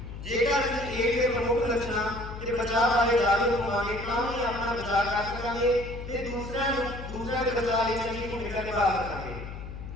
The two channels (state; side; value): noise; left; hum, 10 dB below the sound